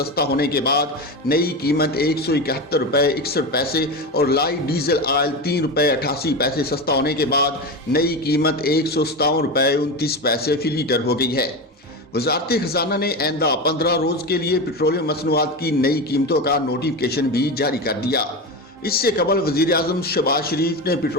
होने के बाद नई कीमत ₹171.61 और लाइट डीजल ऑयल ₹3.88 सस्ता होने के बाद नई कीमत ₹157.29 फी लीटर हो गई है। वजारत खजाना ने आइंदा 15 रोज के लिए पेट्रोलियम मसनूआत की नई कीमतों का नोटिफिकेशन भी जारी कर दिया। इससे कबल वजीर आजम शहबाज शरीफ ने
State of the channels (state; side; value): normal; both; correlation 0.21